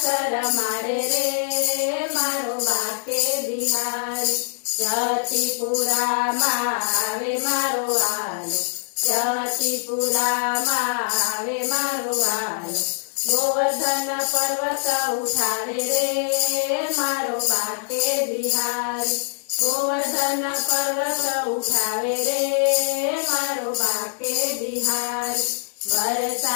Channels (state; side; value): silent; right; digital silence